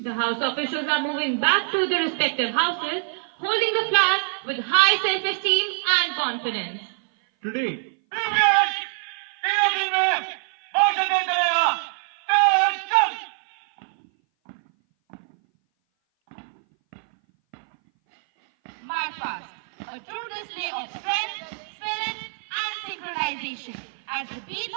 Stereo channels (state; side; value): silent; left; 58 dB below the other